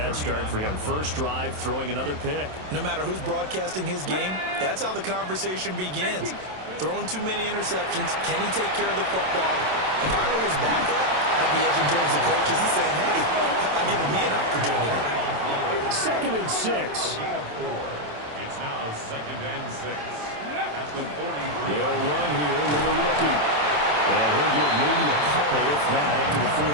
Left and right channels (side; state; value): left; late; 27 ms